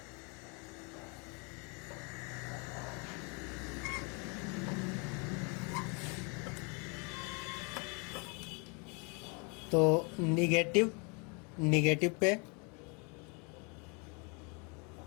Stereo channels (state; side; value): quieter; right; 33.1 dB